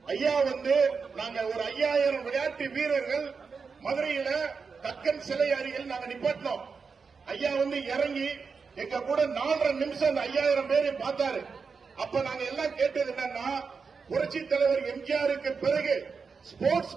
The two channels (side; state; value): left; quieter; 5.2 dB